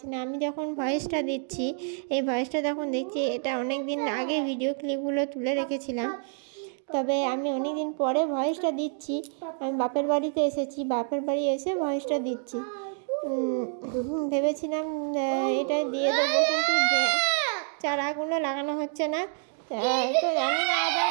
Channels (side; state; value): left; silent; 59 dB below the other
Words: না। আমি যখন ভয়েসটা দিচ্ছি, এই ভয়েসটা যখন দেখছি, এটা অনেক দিন আগে ভিডিও ক্লিপগুলো তুলে রেখেছিলাম, তবে আমি অনেক দিন পরে ভয়েসটা দিচ্ছি। আমি বাপের বাড়িতে এসেছি, বাপের বাড়ি এসে ভয়েসটা দিচ্ছি। ভেবেছিলাম এটা দিয়ে দেবো, কিন্তু চারাগুলো লাগানো হচ্ছে না, তো জানি না আবার।